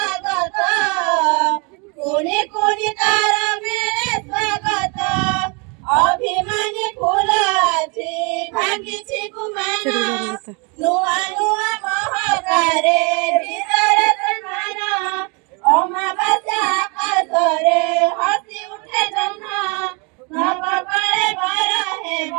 कोणी कोणी तारा मेळे स्वागत अभिमानी फुलाची भांगीची गुमाना नुआ नुआ महाकारे ভিতরে সন্মানা অমাবাস্যা আকাশরে হাসি উঠে জহ্ন নবকলে বর হেব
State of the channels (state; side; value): quieter; left; 32.1 dB